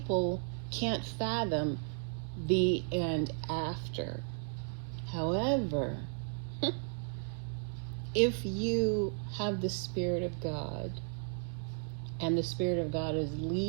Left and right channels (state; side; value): silent; left; 55 dB below the other